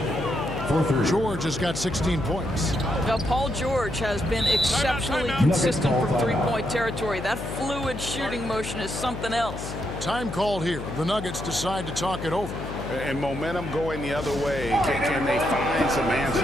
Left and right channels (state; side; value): noise; left; hum, 8 dB below the sound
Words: George has got 16 points. Now, Paul George has been exceptionally consistent from three-point territory. That fluid shooting motion is something else. Time called here. The Nuggets decide to talk it over. And momentum going the other way. Can they find some answers?